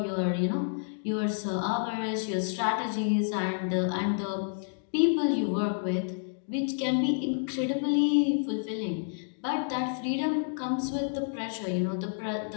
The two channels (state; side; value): silent; right; digital silence